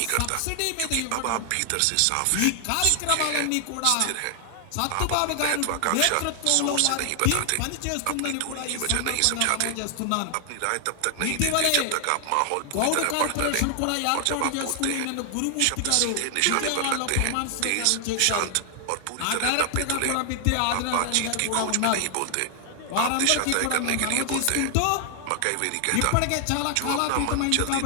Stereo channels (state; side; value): different; both; correlation 0.00